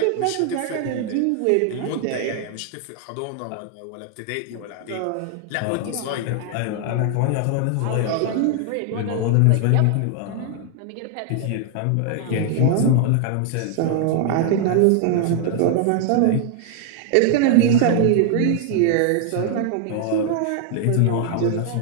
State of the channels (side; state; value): both; different; correlation 0.00